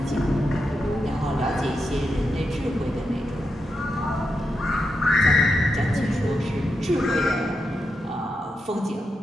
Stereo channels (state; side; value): normal; both; correlation 0.86